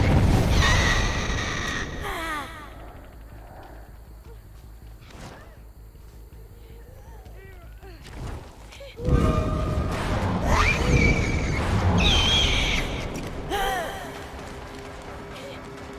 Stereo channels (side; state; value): both; identical; correlation 1.00